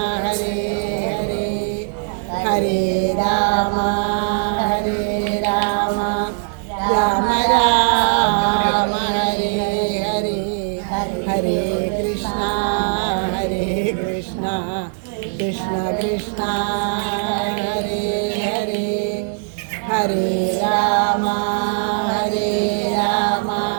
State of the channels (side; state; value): left; silent; digital silence